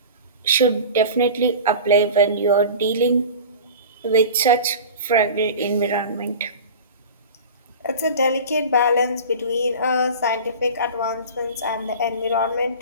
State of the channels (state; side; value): inverted; both; correlation -0.35